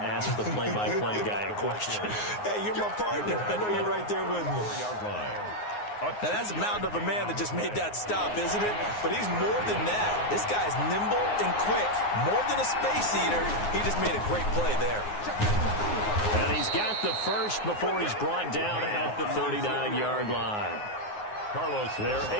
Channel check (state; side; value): late; right; 9.6 ms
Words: the play-by-play guy a question. Hey, you're my partner. I know you're right there with me. Now, that's a mountain of a man that just made that stop, isn't it? But he's more than that. This guy's nimble and quick. More than a space eater, he just made a great play there. And he's got the first before he's brought down at the 39-yard line. Carlos, they're